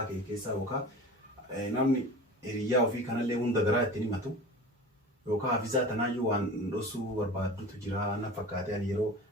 kee keessaa yookaan namni hiriyyaa ofii kanallee hunda garaa ittiin himatu yookaan hafizaa tanaayyuu waan dhosuu barbaaddutu jira na fakkaate ani yeroo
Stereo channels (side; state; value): both; normal; correlation 0.36